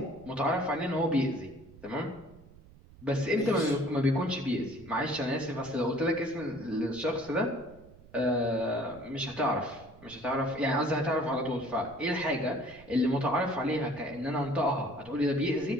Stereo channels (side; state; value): right; noise; rumble, 22 dB below the sound